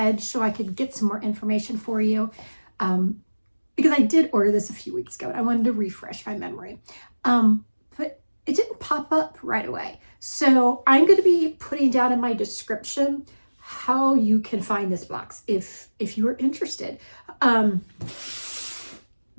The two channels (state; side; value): inverted; both; correlation -1.00